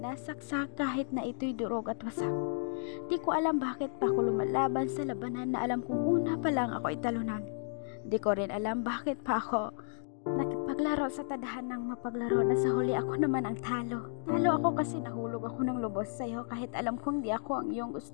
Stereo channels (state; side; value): silent; right; digital silence